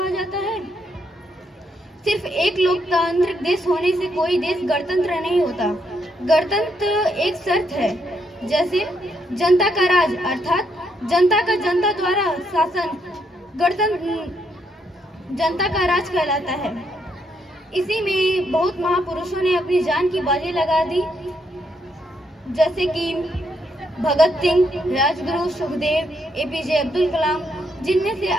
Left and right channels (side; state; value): both; normal; correlation 0.76